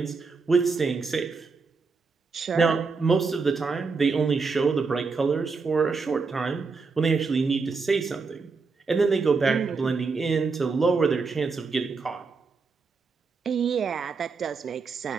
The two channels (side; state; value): left; quieter; 4.6 dB